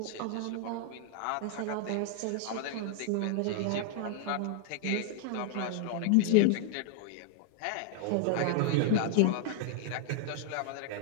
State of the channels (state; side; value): different; both; correlation 0.00